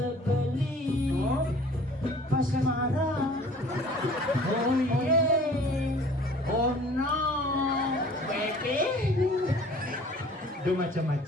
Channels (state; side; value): normal; both; correlation 0.49